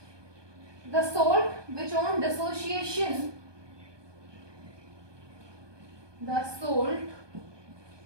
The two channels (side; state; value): left; late; 1.2 ms